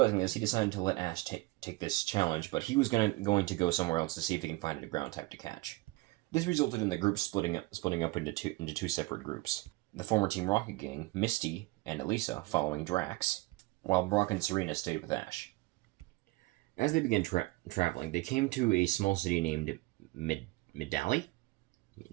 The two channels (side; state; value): left; quieter; 21.7 dB